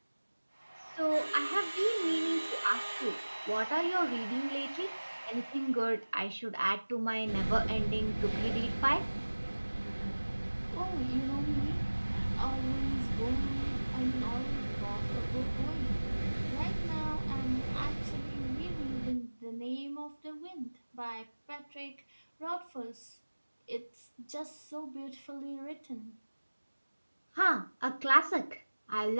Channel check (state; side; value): inverted; both; correlation -1.00